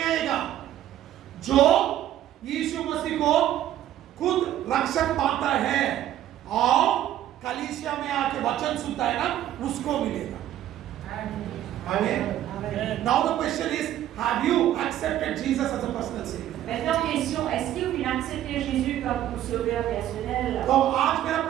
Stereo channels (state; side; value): quieter; left; 12.3 dB